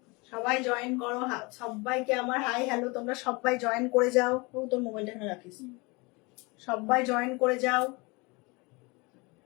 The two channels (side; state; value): right; quieter; 26.6 dB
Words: সবাই জয়েন করো, সবাইকে আমার হাই হ্যালো। তোমরা সবাই জয়েন করে যাও। ও তোর মোবাইলটা এখানে রাখিস। সবাই জয়েন করে যাও।